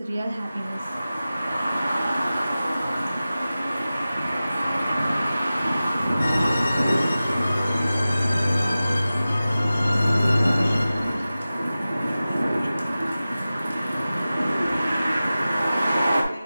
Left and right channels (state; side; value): inverted; both; correlation -0.96